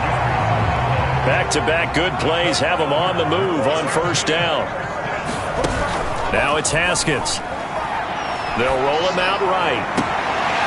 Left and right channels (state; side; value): identical; both; correlation 1.00